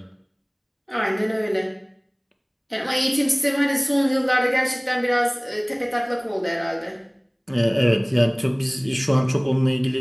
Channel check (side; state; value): both; identical; correlation 1.00